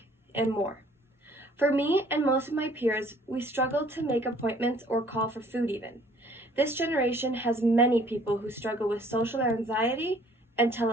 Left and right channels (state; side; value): normal; both; correlation 0.57